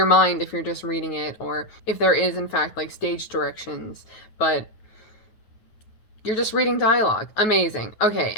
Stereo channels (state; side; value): late; right; 9.3 ms